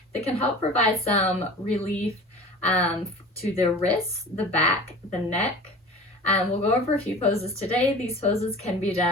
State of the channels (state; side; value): normal; both; correlation 0.39